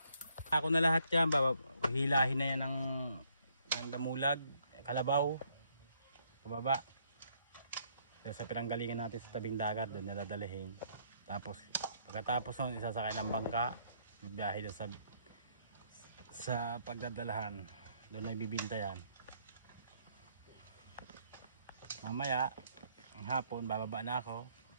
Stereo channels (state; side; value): inverted; both; correlation -0.68